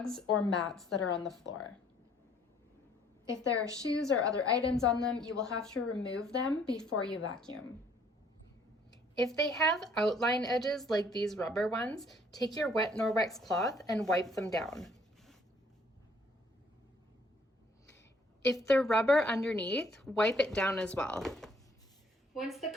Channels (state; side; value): normal; both; correlation 0.61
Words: or mats that are on the floor. If there are shoes or other items on them, you will have to remove them before you vacuum. If they have outline edges like these rubber ones, take your wet Norwex cloth and wipe them down. If they're rubber underneath, wipe it down as well. Once the